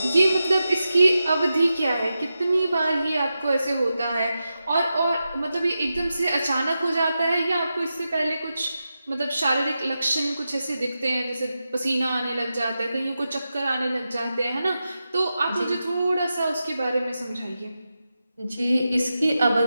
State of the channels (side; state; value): both; inverted; correlation -0.90